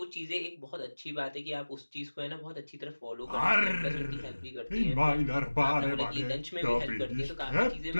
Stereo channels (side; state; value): both; inverted; correlation -1.00